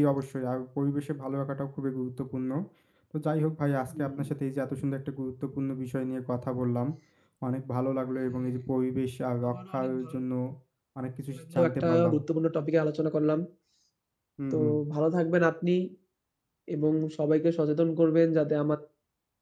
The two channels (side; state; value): both; identical; correlation 1.00